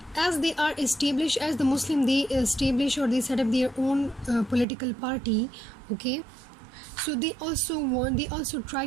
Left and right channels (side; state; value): left; drops out; at 4.7 s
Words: as they are established, as the Muslim, they establish or they set up their own political party. Okay, so they also